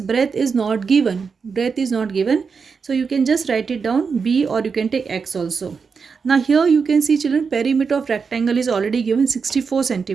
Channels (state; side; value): quieter; left; 5.5 dB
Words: is not given. Breadth is not given. So you can just write it down b, or you can take x also. Now here you can see children, perimeter of rectangle is already given 64